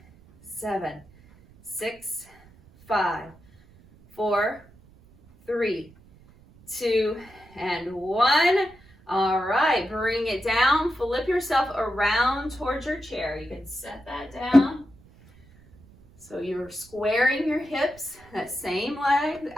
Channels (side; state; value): right; noise; rumble, 26 dB below the sound